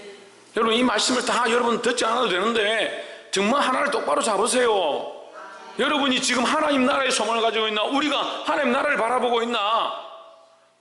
여러분 이 말씀을 다 여러분 듣지 않아도 되는데 정말 하나를 똑바로 잡으세요. 여러분이 지금 하나님 나라의 소망을 가지고 있나? 우리가 하나님 나라를 바라보고 있나?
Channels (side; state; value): both; identical; correlation 1.00